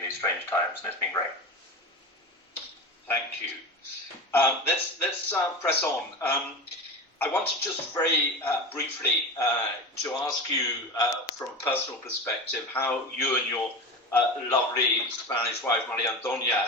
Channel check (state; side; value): normal; both; correlation 0.27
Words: these strange times, and it's been great. Thank you. Let's press on. I wanted just very briefly to ask you, from a personal perspective, how you and your lovely Spanish wife, Maria Antonia,